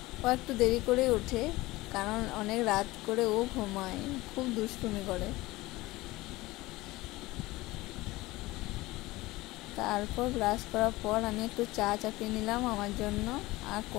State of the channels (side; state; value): right; quieter; 19.6 dB